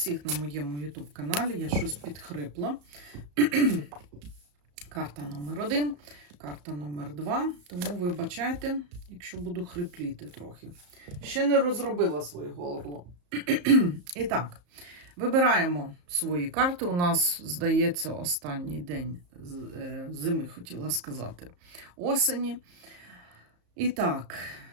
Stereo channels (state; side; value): late; left; 34 ms